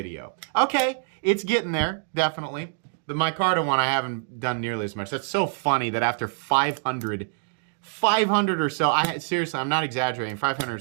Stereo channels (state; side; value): silent; left; digital silence